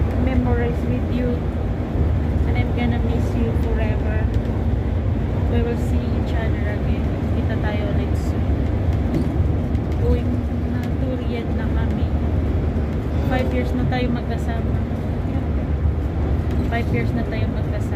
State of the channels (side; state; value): both; identical; correlation 1.00